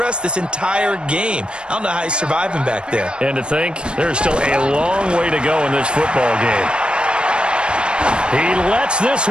this entire game. I don't know how he's surviving back there. And to think, there's still a long way to go in this football game. He lets this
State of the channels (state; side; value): late; left; 0.054 ms